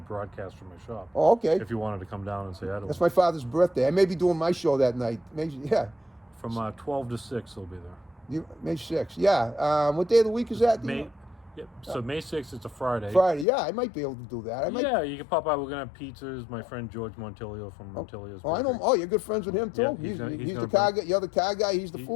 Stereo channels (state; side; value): drops out; right; at 13.5 s